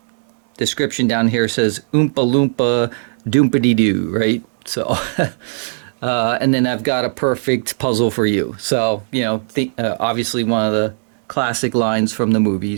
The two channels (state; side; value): silent; left; 66 dB below the other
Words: description down here says Oompa Loompa Doompity Doo, right? So, and then I've got a perfect puzzle for you. So, you know, obviously one of the classic lines from the